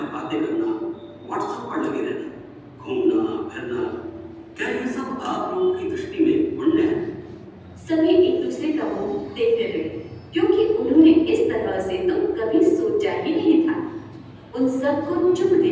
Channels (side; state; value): both; identical; correlation 1.00